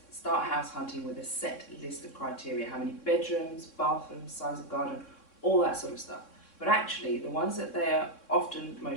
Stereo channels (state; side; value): late; right; 3.6 ms